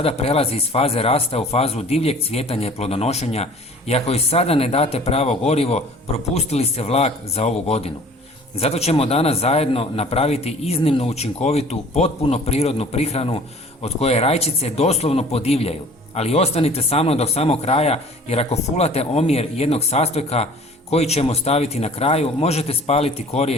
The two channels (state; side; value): normal; both; correlation 0.49